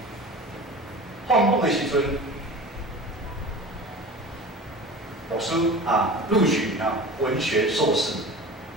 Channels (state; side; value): normal; both; correlation 0.36